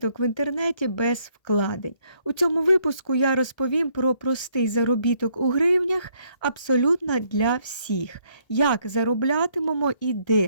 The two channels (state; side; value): late; right; 1.3 ms